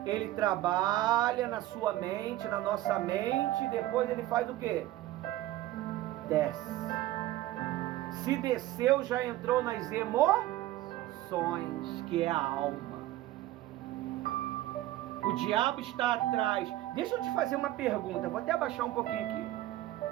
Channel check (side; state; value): left; quieter; 15.4 dB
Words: Ele trabalha na sua mente, na nossa mente, e depois ele faz o quê? Desce. Se desceu, já entrou nas emoções, que é a alma. O diabo está atrás. Deixa eu te fazer uma pergunta. Vou até abaixar um pouquinho aqui.